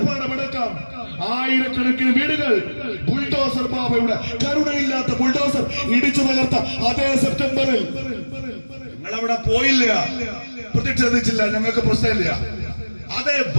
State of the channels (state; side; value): inverted; both; correlation -1.00